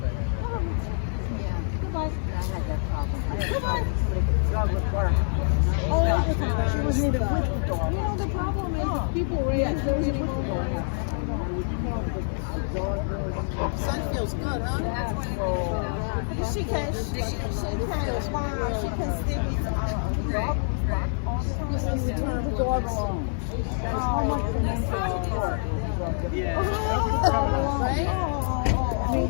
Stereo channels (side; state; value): right; silent; digital silence